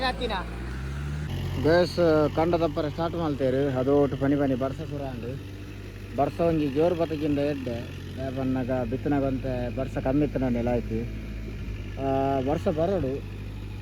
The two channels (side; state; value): both; identical; correlation 1.00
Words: ಹತ್ತಿನ ಬೇಸ್ ಕಂಡ ತಪ್ಪರ ಸ್ಟಾರ್ಟ್ ಮಾಡ್ತೇರು ಅದು ಒಟ್ಟು ಪನಿ ಬರ್ಸ ಪೂರ ಅಂಡು ಬರ್ಸ ಒಂಜಿ ಜೋರು ಬತ್ತಗಿಂದ ಎಡ್ಡೆ ಬನ್ನಾಗ ಬಿತ್ತನಾಗಂತ ಬರ್ಸ ಕಮ್ಮಿ ಇತ್ತು ನೆಲ ಆಯ್ತು ಬರ್ಸ ಬರೋಡು